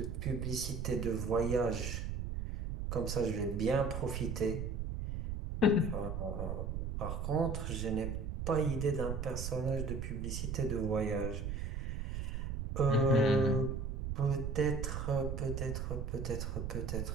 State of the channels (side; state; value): right; noise; rumble, 3 dB below the sound